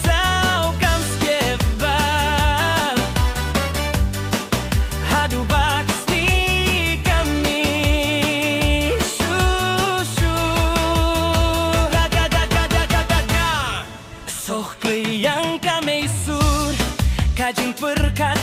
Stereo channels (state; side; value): identical; both; correlation 1.00